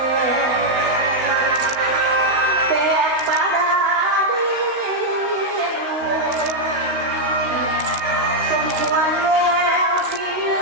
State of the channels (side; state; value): left; late; 16 ms